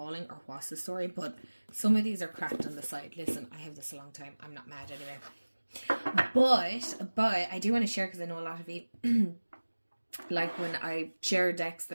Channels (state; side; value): inverted; both; correlation -1.00